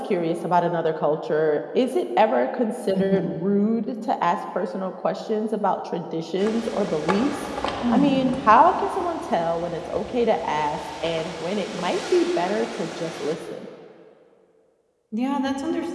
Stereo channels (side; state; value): both; identical; correlation 1.00